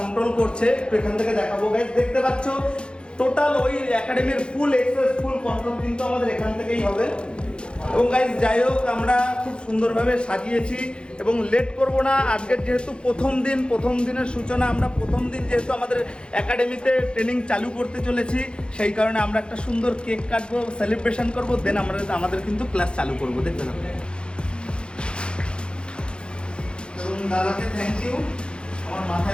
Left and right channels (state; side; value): late; right; 0.054 ms